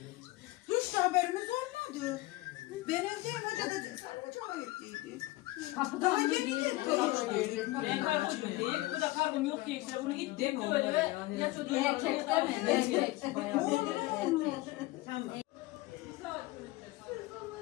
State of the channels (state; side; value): quieter; right; 19.3 dB